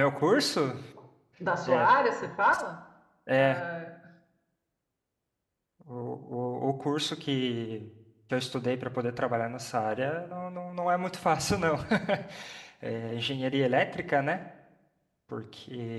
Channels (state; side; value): identical; both; correlation 1.00